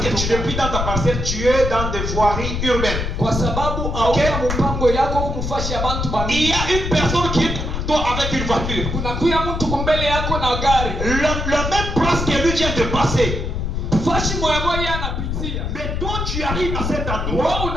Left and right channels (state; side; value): noise; left; rumble, 2 dB below the sound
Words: que tu n'es plus dans ta parcelle, tu es dans des voiries urbaines. kwa sababu hauna mpango yako kumfashi ya bantu Il bani. y a une personne qui est devant toi avec une voiture. Kunakuya mtu kumbele yako na gari, La même place que lui vient de passer. fashi moya moya anapitia, Mais toi, tu arrives à cet endroit, wewe